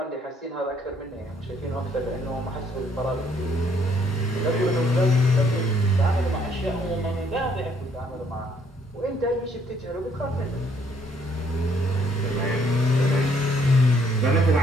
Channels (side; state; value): both; normal; correlation 0.66